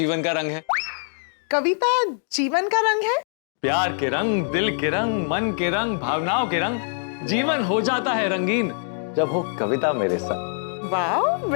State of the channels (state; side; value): silent; right; digital silence